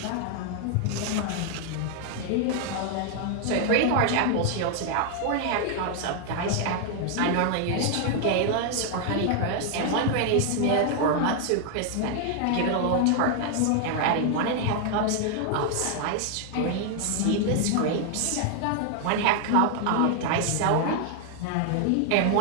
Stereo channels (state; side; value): different; both; correlation 0.00